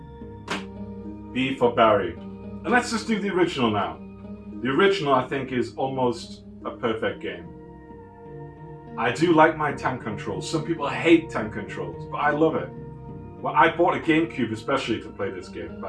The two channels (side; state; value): both; identical; correlation 1.00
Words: B for Barry. And let's just do the original now. The original, I think, is almost a perfect game. I do like my tank controls. Some people hate tank controls, but I love it. Well, I bought a GameCube especially to play this game